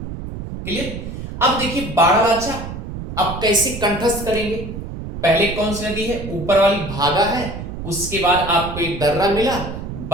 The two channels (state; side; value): noise; right; rumble, 8 dB below the sound